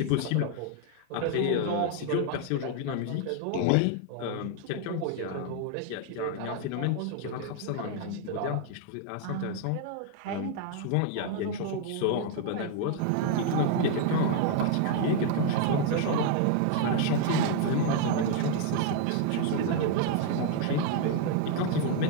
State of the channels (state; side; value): different; both; correlation 0.00